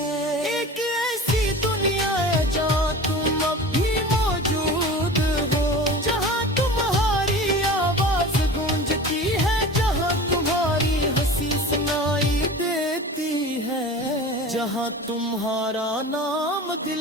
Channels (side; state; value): both; normal; correlation 0.36